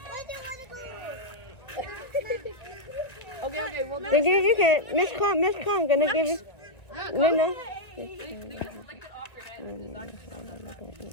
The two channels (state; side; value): late; right; 2.0 ms